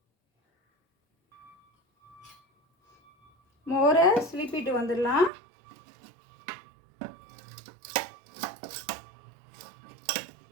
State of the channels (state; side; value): drops out; left; at 5.3 s